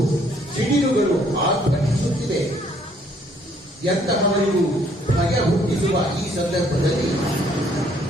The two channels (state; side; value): normal; both; correlation 0.64